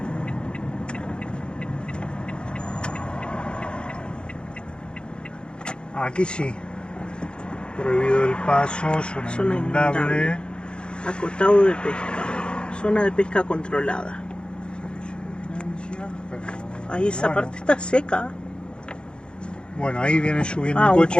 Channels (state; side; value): late; right; 0.052 ms